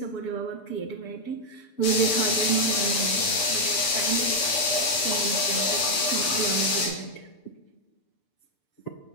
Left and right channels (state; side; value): late; right; 6.9 ms